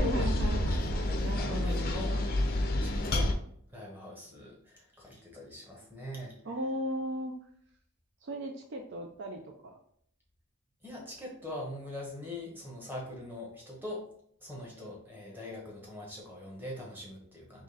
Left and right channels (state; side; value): normal; both; correlation 0.67